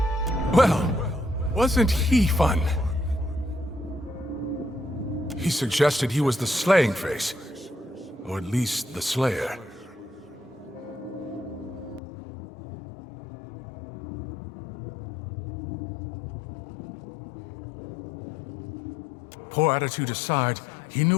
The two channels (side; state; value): right; drops out; at 12.0 s